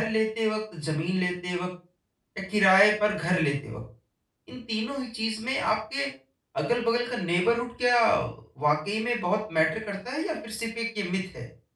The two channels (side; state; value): both; identical; correlation 1.00